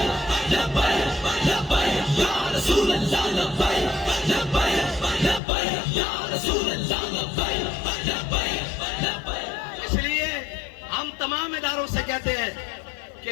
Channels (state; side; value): drops out; right; at 5.4 s